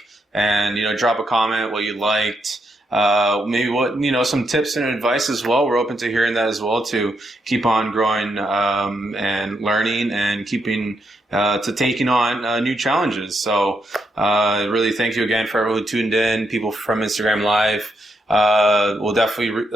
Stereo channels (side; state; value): both; normal; correlation 0.80